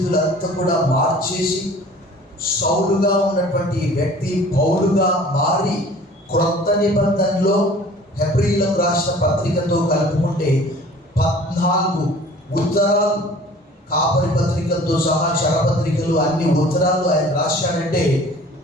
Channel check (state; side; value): normal; both; correlation 0.48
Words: కూడా మార్చేసి, సౌలుగా ఉన్నటువంటి వ్యక్తి పౌలుగా మారి, క్రొత్త నిబంధనలో హెబ్రీయులకు రాసిన పత్రికతో కలుపుకుంటే 14 ఉత్తరాలు, కాపరి పత్రికలతో సహా చరపత్రికలు, అన్ని ఉత్తరాలు ఆయన రాశాడంటే